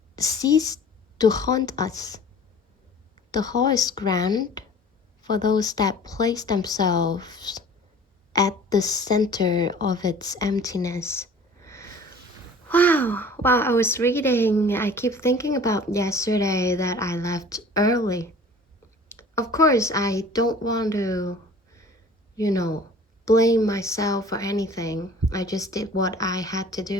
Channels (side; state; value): both; normal; correlation 0.46